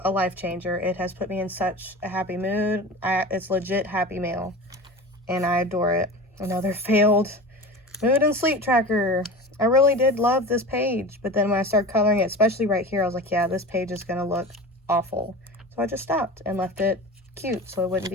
a life changer. It has put me in such a happy mood. It's legit happy mail, and I adore it. Another failed mood and sleep tracker. I really did love this page, but then when I started coloring it, especially right here, I was like, yeah, this page is gonna look awful. So I just stopped and left it cute so it wouldn't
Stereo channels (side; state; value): both; normal; correlation 0.32